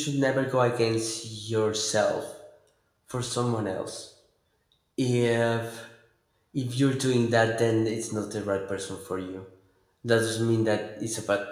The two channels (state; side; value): identical; both; correlation 1.00